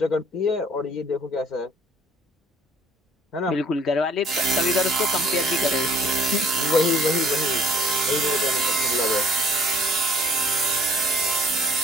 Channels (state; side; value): normal; both; correlation 0.56